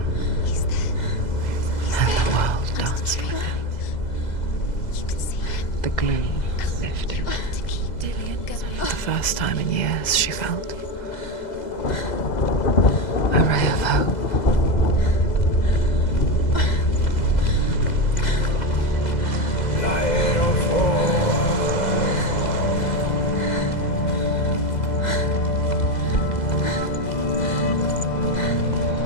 He's there. and the world danced with him. You can see him. The gloom lifted. You have to keep Dillian going. For the first time in years, she felt a ray of hope.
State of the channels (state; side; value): late; right; 2.0 ms